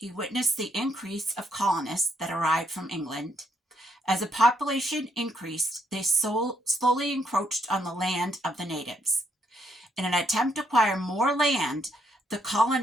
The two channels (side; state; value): both; normal; correlation 0.75